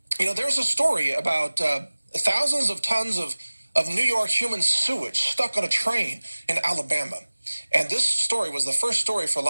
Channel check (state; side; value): inverted; both; correlation -1.00